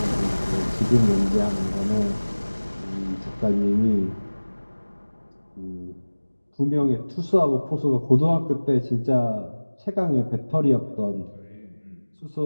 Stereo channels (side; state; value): both; inverted; correlation -1.00